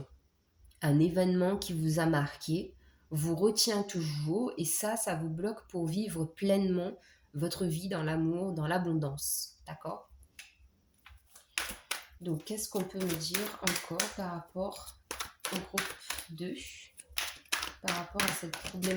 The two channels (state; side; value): identical; both; correlation 1.00